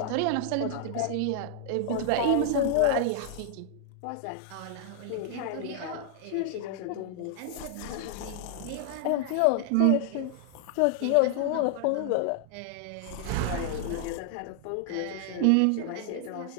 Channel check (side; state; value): both; different; correlation 0.00